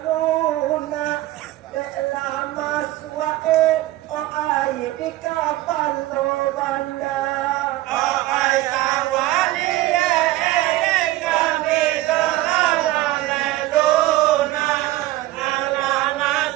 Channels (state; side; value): quieter; left; 16.8 dB